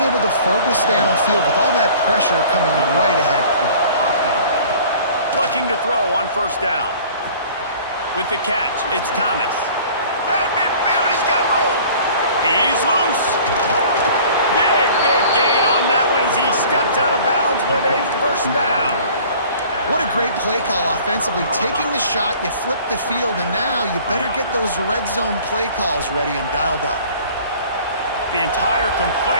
able to focus downfield with all that pressure coming right ahead. Looking to throw on 1st down. With the catch, it's Thomas. At midfield, he's got room. He's loose. Big gain on that one as he steps out of bounds with a 1st down. What a great play call offensively. Taking the shot, you flip the field, and now you better get those red zone play calls ready and dialed up. The entire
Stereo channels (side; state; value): both; inverted; correlation -0.49